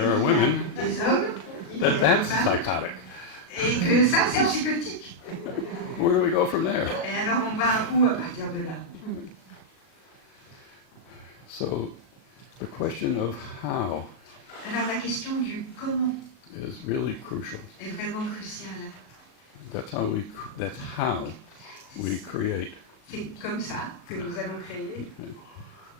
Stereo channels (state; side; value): late; right; 37 ms